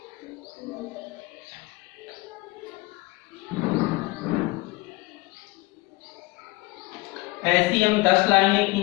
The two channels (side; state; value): right; quieter; 21.7 dB